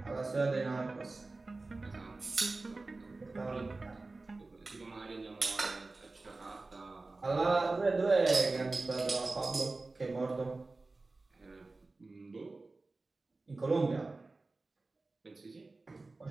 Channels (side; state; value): left; quieter; 3.4 dB